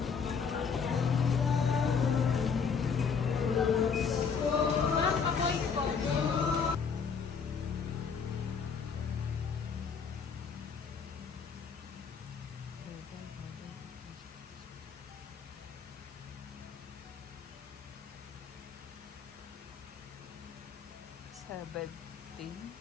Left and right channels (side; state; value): right; quieter; 6.0 dB